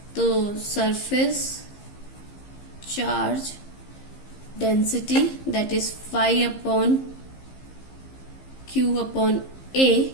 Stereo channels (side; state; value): right; late; 15 ms